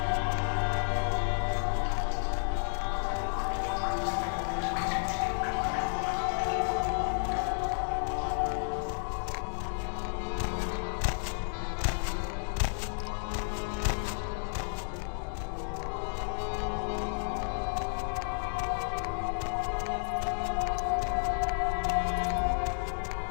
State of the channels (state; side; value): silent; right; digital silence